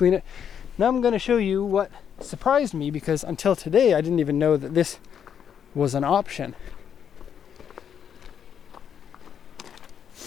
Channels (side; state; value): right; quieter; 8.3 dB